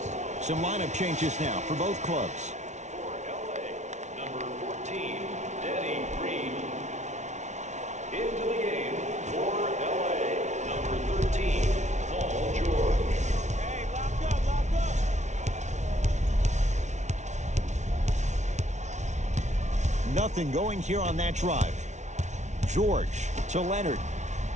Some lineup changes now for both clubs. For LA, number 14, Danny Green. Into the game for LA, number 13, Paul George. Hey, lock up, lock up. Nothing going here on that drive. George to Leonard.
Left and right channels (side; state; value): left; late; 0.33 ms